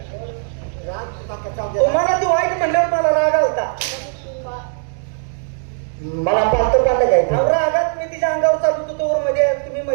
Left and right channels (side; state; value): left; silent; digital silence